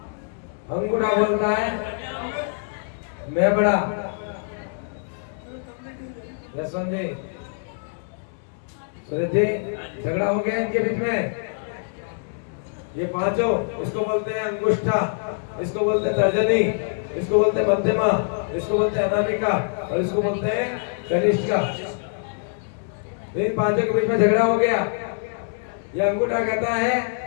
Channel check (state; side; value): silent; right; digital silence